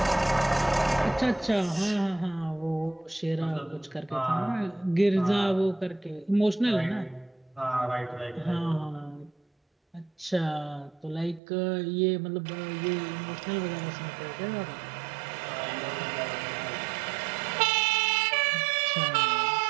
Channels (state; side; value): drops out; left; at 11.4 s